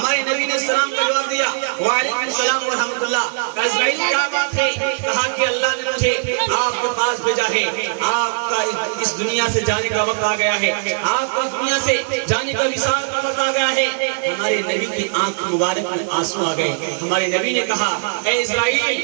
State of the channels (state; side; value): silent; left; digital silence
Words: نبی نے سلام کا جواب دیا، وعلیکم السلام ورحمۃ اللہ۔ کہا اسرائیل کیا بات ہے؟ کہا کہ اللہ نے مجھے آپ کے پاس بھیجا ہے، آپ کا اس دنیا سے جانے کا وقت آ گیا ہے، آپ کا اس دنیا سے جانے کا وصال کا وقت آ گیا ہے۔ ہمارے نبی کی آنکھ مبارک میں آنسو آ گئے، ہمارے نبی نے کہا اے اسرائیل